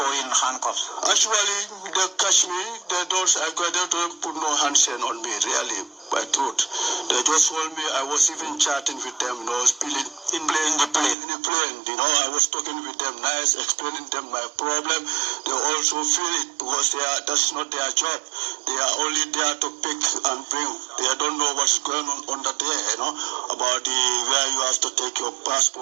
in handcuffs? Actually, they catch me. They don't put no handchain on me, really, by truth. They just hold me. I was even chatting with them, you know, spilling in the plane, you know. I was talking with them nice, explaining them my problem. They also feel it, because that's not their job. They are only there to pick and bring. They don't know what's going on under there, you know, about where you have to take your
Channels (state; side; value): drops out; left; at 11.2 s